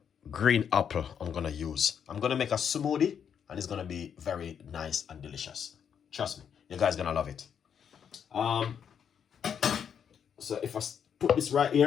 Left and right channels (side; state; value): right; quieter; 7.8 dB